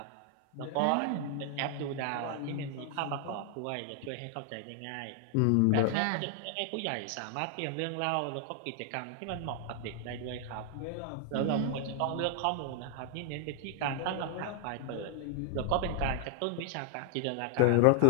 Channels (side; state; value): both; different; correlation 0.00